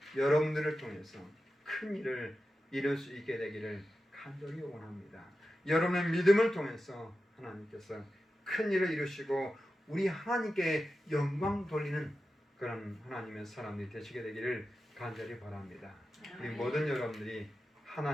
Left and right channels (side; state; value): both; normal; correlation 0.92